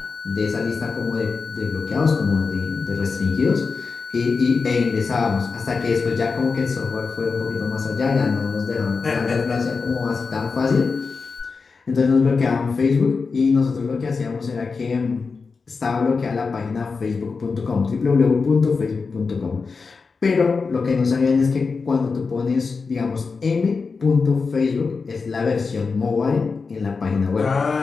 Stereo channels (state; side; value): quieter; right; 4.7 dB